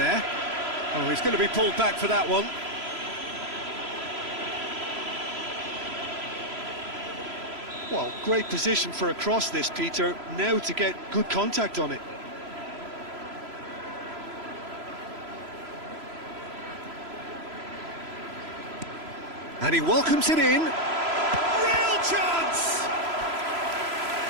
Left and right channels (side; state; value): left; late; 3.0 ms